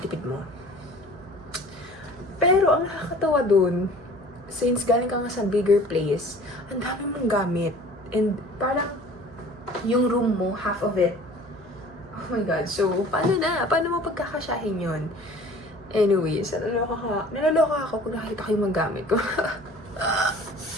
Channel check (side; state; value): right; noise; hum, 22 dB below the sound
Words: mo. Pero ang nakakatawa dun, since galing ka nga sa bigger place, ang dami mong gamit. And parang yung room mo, half of it. Oh my God. So, paano na? Paano mo pagkakasyahin yun? Anyways, naloloka ako kung nakita ko yung mga gamit ko.